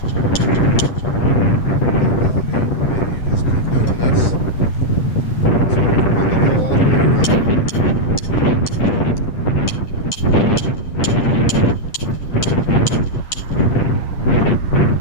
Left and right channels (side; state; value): right; late; 9.5 ms